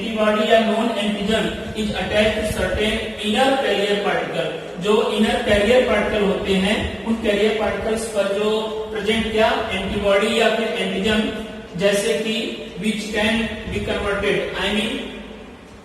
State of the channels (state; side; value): identical; both; correlation 1.00